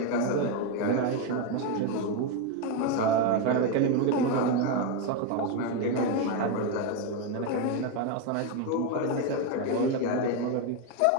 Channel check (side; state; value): both; different; correlation 0.02